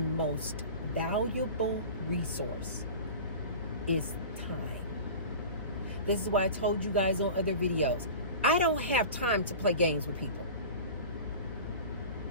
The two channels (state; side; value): inverted; both; correlation -0.36